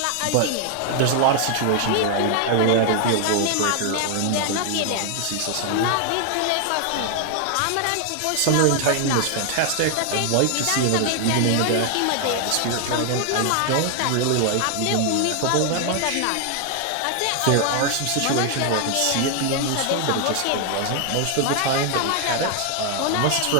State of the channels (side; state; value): both; different; correlation 0.00